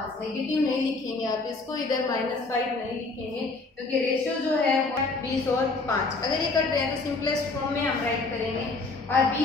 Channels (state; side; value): quieter; right; 3.6 dB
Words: नेगेटिव नहीं लिखेंगे आप इसको, इधर -5 नहीं लिखेंगे क्योंकि रेशियो जो है 20 और 5। अगर ये कर रहे हैं तो सिंपलेस्ट फॉर्म में हम राइट करेंगे। और